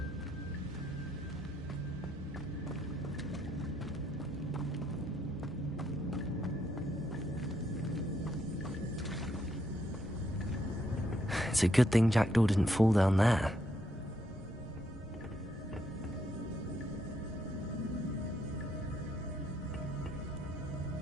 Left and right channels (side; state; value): both; normal; correlation 0.75